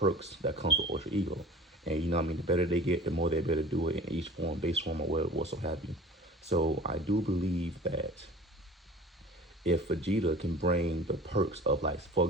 that comes with Ultra Ego. And you know what I mean, the better they get, the more they're able to do it in each form, base form, or what so have you. So I do believe that if Vegeta can bring the perks of, like, for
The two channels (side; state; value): both; normal; correlation 0.42